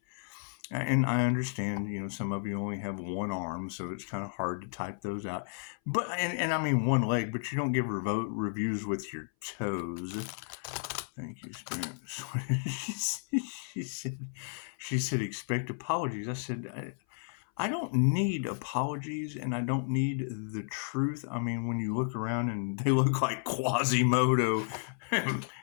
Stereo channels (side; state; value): right; silent; 56 dB below the other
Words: And I understand, some of you only have one arm, so it's kind of hard to type those out. But and I mean one leg, but you don't give reviews with your toes. Thank you, Spirit. She said, expect apologies. I said, I don't need apologies, and I don't need the truth. I mean, when you look around and they look like Quasimodo,